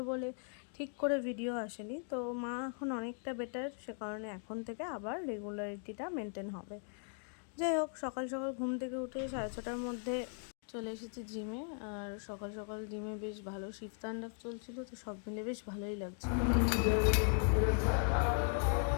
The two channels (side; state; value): right; silent; 52 dB below the other